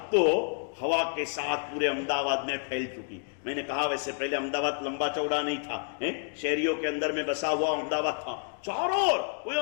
तो हवा के साथ पूरे अहमदाबाद में फैल चुकी। मैंने कहा वैसे पहले अहमदाबाद लंबा चौड़ा नहीं था, शहरियों के अंदर में बसा हुआ अहमदाबाद था। चारों ओर कोई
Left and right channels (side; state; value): right; silent; 58 dB below the other